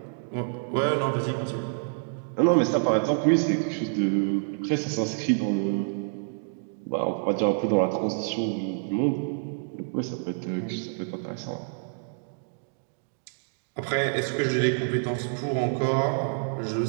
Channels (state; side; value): silent; left; digital silence